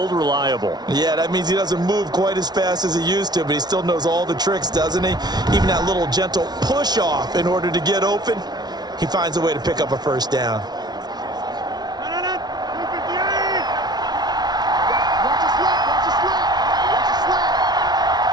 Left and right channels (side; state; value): left; late; 0.19 ms